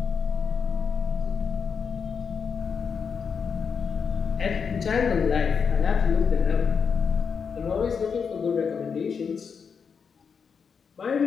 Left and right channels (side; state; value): right; quieter; 6.2 dB